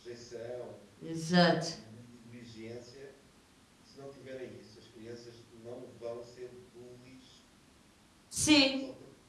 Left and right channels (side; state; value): both; identical; correlation 1.00